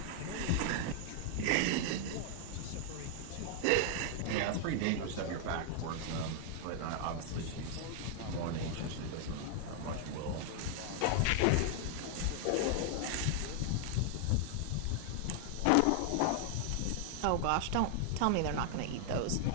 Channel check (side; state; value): both; different; correlation 0.00